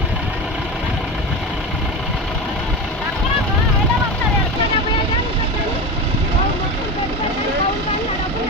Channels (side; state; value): both; normal; correlation 0.23